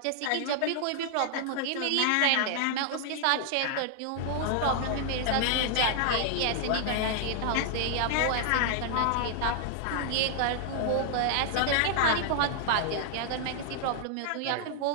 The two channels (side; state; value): both; different; correlation -0.01